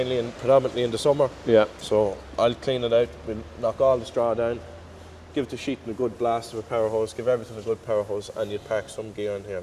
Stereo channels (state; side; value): identical; both; correlation 1.00